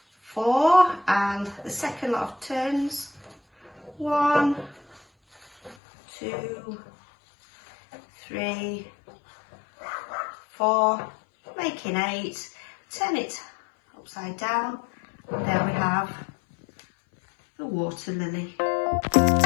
4, and the second lot of turns, 1, 2, 3, 4, making 8, turn it upside down, and there we have the water lily.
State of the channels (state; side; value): drops out; right; at 5.8 s